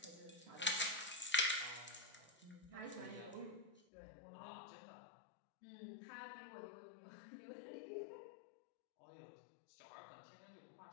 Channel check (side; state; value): right; drops out; at 3.8 s